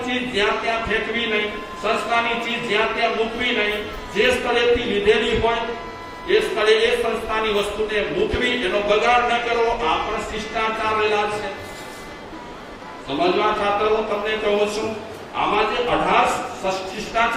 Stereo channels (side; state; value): both; identical; correlation 1.00